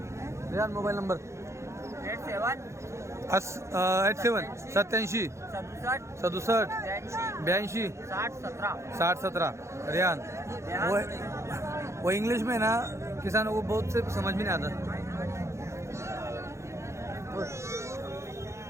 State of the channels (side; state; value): left; late; 0.14 ms